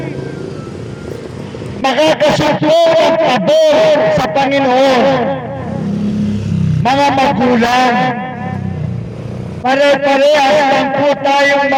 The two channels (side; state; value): both; identical; correlation 1.00